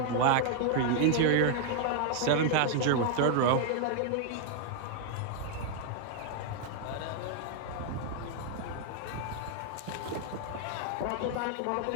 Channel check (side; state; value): both; different; correlation 0.00